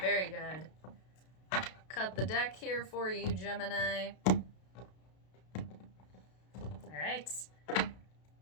good. Cut the deck here for you, Gemini. All right.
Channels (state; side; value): late; right; 32 ms